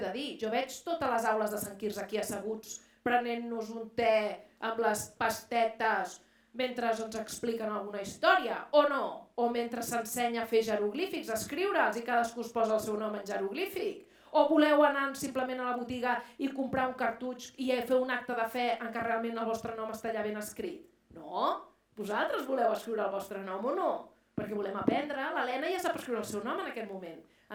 dir? Jo veig totes les aules de Sant Quirze aquí asseguts prenent-nos un te amb les pastetes mentre ens expliquen alguna història, o no? O mentre s'ensenya a fer jeroglífics, a escriure'ls i cadascú es posa el seu nom en jeroglífic? O voleu anar simplement a la botiga i comprar un cartutx i fer un acte de fe en què realment el vostre nom està allà ben escrit? No? Vosaltres voleu escriure el vostre nom o no? Perquè volem aprendre, l'Helena ja sap escriure el seu nom en aquest moment,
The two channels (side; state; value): both; identical; correlation 1.00